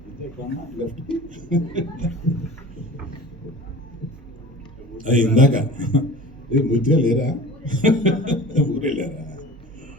ఇందాక పూర్తిగా లేరా, ఊరే లేరా,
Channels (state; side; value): normal; both; correlation 0.39